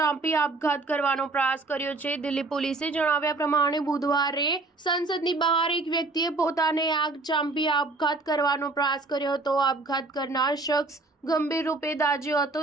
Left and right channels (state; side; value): quieter; left; 3.4 dB